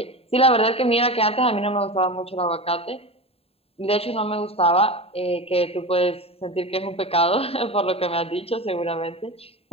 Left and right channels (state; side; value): late; right; 0.28 ms